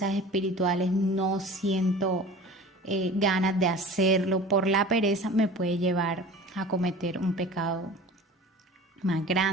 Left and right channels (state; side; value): normal; both; correlation 0.40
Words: espirituales no siento ganas de hacerlo por la pereza, me puede llevar a cometer un pecado más